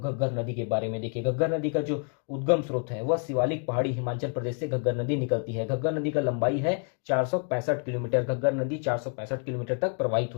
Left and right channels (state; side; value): quieter; right; 39.7 dB